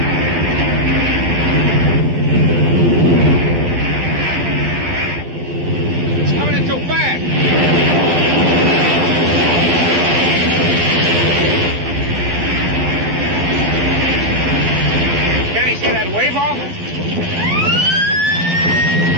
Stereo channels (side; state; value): left; late; 12 ms